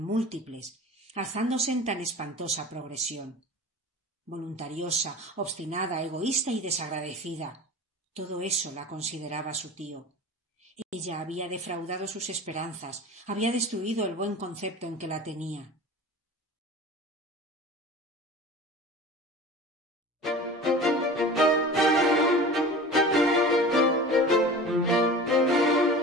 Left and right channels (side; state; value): both; normal; correlation 0.37